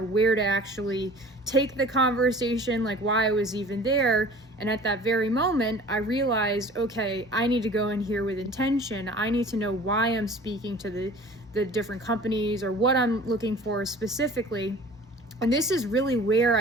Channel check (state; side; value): normal; both; correlation 0.45